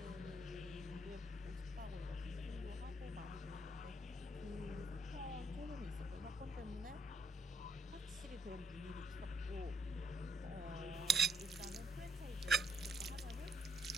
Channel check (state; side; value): normal; both; correlation 0.72